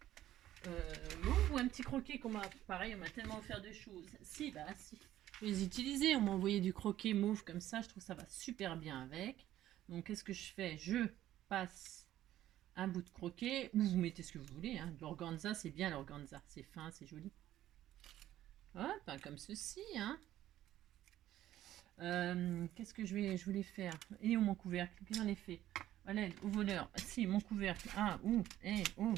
mauve ou un petit croquet qu'on m'a... Pareil, on m'a tellement offert de choses. Si, bah si. Je vais les utiliser. On m'a envoyé du croquet mauve comme ça. Je trouve que ça va super bien avec. Donc, qu'est-ce que je fais? Je passe un bout de croquet. Ou vous mettez ce que vous voulez. Hein. L'organza, c'est bien l'organza. C'est fin, c'est joli. Hop, comme ceci. Hein. Qu'est-ce que je voulais faire? Et où mon couvercle? Qu'est-ce que j'en ai fait? Allez, au voleur. Si, mon couvercle. Ah, bon.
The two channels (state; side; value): quieter; left; 13.2 dB